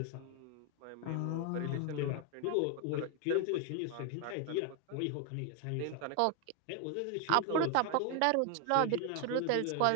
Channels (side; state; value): both; different; correlation 0.00